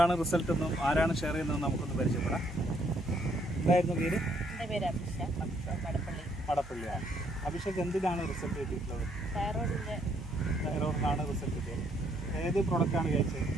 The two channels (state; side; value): normal; both; correlation 0.69